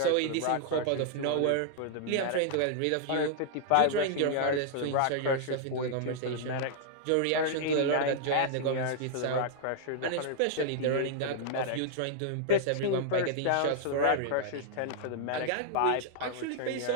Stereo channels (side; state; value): both; different; correlation -0.01